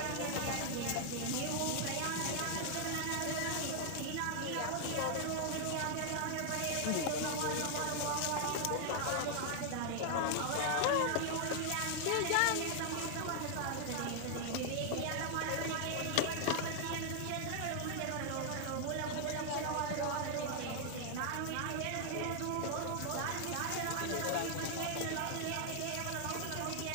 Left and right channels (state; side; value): different; both; correlation 0.00